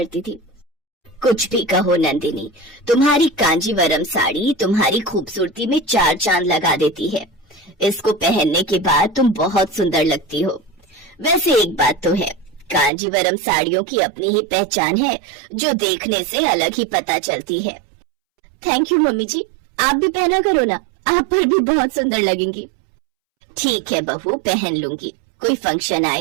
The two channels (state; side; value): drops out; left; at 12.9 s